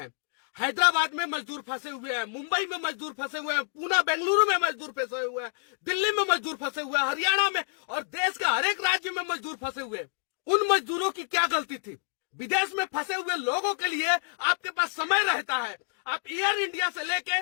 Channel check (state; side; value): silent; right; digital silence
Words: हैदराबाद में मजदूर फंसे हुए हैं, मुंबई में मजदूर फंसे हुए हैं, पूना बेंगलुरु में मजदूर फंसे हुए हैं, दिल्ली में मजदूर फंसे हुए हैं, हरियाणा में और देश के हर एक राज्य में मजदूर फंसे हुए हैं। उन मजदूरों की क्या गलती थी? विदेश में फंसे हुए लोगों के लिए आपके पास समय रहता है। आप एयर इंडिया से लेके